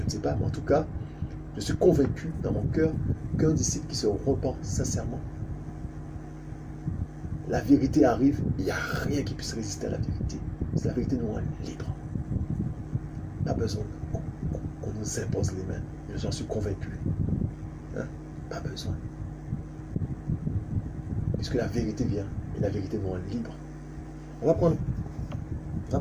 pas. Mais en tout cas, je suis convaincu dans mon cœur qu'un disciple qui se repent sincèrement, la vérité arrive, il n'y a rien qui puisse résister à la vérité. C'est la vérité nous rend libre. Pas besoin qu'on nous impose les mains. J'en suis convaincu. Hein? Pas besoin. Puisque la vérité vient et la vérité nous rend libre. On va prendre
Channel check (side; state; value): both; identical; correlation 1.00